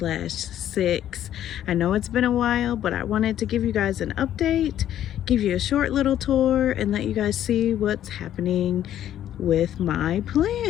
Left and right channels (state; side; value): quieter; right; 11.3 dB